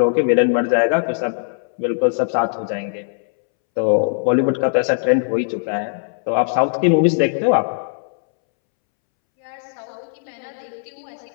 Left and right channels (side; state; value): right; silent; 66 dB below the other